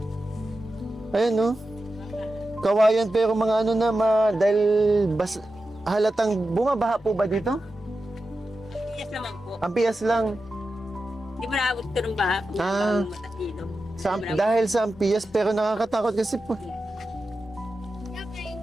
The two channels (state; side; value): normal; both; correlation 0.91